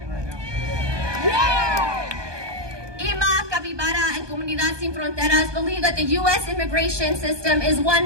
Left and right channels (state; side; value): late; left; 1.2 ms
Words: right now. Yeah! IMA, Capybara, and Comunidad Sin Fronteras believe that the U.S. immigration system is one